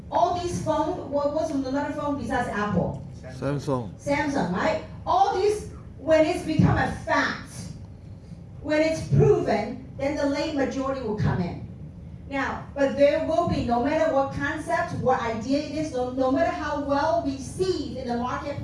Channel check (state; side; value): identical; both; correlation 1.00